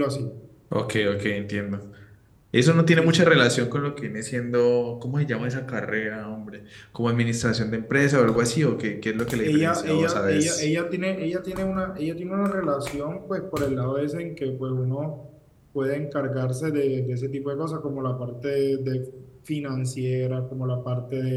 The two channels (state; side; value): identical; both; correlation 1.00